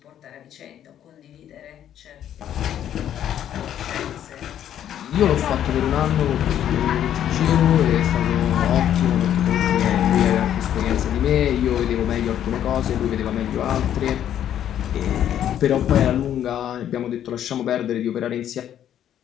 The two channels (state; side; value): quieter; right; 10.5 dB